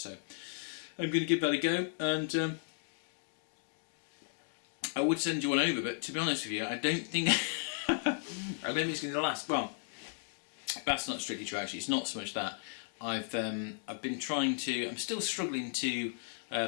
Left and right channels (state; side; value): silent; right; digital silence